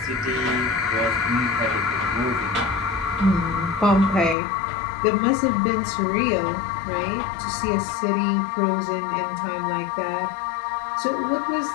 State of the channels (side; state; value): right; drops out; at 4.4 s